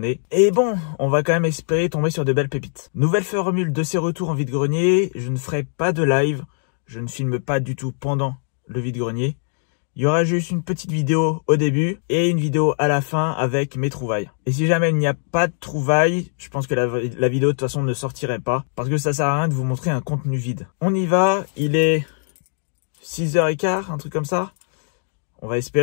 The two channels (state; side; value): silent; right; digital silence